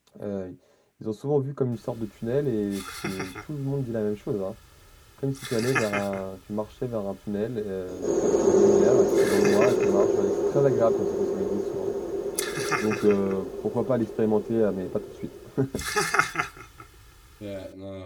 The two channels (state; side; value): identical; both; correlation 1.00